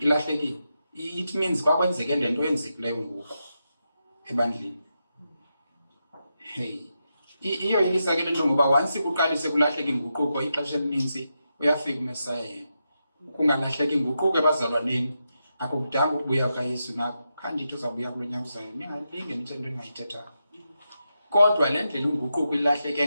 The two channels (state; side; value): inverted; both; correlation -0.87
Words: It means kwakwenzeke le nto yenzekileyo ngoku ebandleni. Hey. Iyo yilisa ke lento ngoba once kuqalise kulahleka inguquko ixesha elininzi uyafika uMesaya yena. Kungalahleka inguquko ebazalwaneni akukudanga ukubuya kaYesu nako khandithi uzabuya kulonyaka uzayo ningalinge nithe into engayithetha. Kodwa le ndlela inguquko